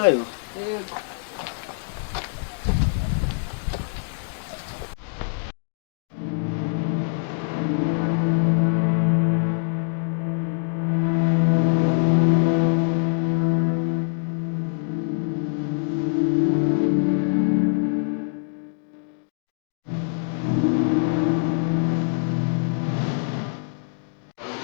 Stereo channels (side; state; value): right; silent; digital silence